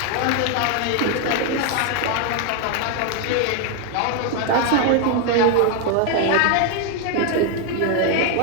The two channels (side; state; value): both; different; correlation 0.01